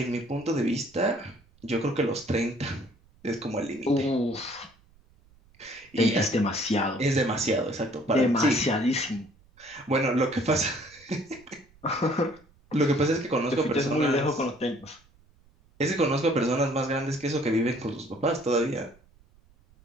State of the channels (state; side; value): noise; right; rumble, 30 dB below the sound